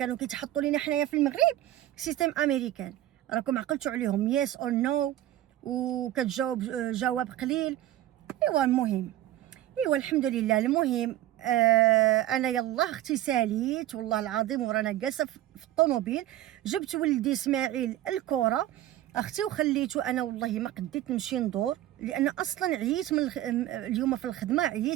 كيتحطوا لينا حنايا في المغرب سيستم امريكان، راكم عقلتوا عليهم يس اور نو وكتجاوب جواب قليل. ايوا المهم ايوا الحمد لله. المهم انا يلا اختي ساليت والله العظيم، ورانا جالسه في الطوموبيل جبت ولدي اسماعيل الكره اختي وخليته. انا والله ما قديت نمشي ندور لان اصلا عييت من اليوم في الخدمه،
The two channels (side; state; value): left; quieter; 13.8 dB